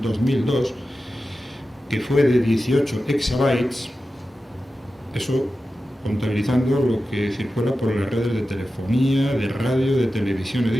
2002, que fue de 18 exabytes, eso contabilizando lo que circula por las redes de telefonía, de radio, de televisión y de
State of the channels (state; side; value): normal; both; correlation 0.93